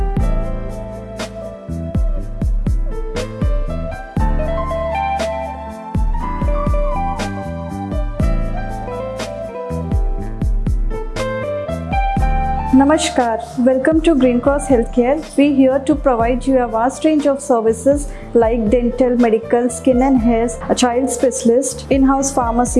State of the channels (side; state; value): both; identical; correlation 1.00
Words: Namaskar, welcome to Green Cross Healthcare. We here to provide you a vast range of services like dental, medical, skin and hair, a child specialist, in-house